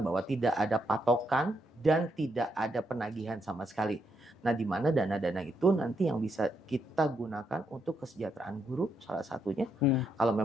tidak ada patokan dan tidak ada penagihan sama sekali. Nah, di mana dana-dana itu nanti yang bisa kita gunakan untuk kesejahteraan guru salah satunya. Kalau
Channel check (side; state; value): both; normal; correlation 0.78